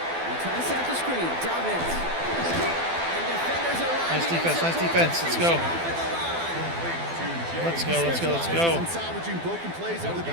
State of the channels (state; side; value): late; left; 12 ms